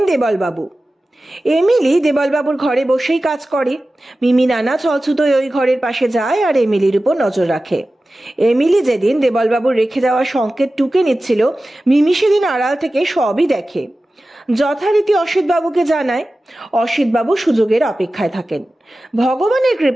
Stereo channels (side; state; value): both; normal; correlation 0.95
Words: দেবলবাবু। এমিলি দেবলবাবুর ঘরে বসেই কাজ করে। মিমি নানা ছলছুতোয় ওই ঘরের পাশে যায় আর এমিলির উপর নজর রাখে। এমিলি যেদিন দেবলবাবুর রেখে যাওয়া সংকেত টুকে নিচ্ছিল, মিমি সেদিন আড়াল থেকে সবই দেখে। যথারীতি অসিত বাবুকে জানায়। অসিত বাবু সুযোগের অপেক্ষায় থাকেন। ভগবানের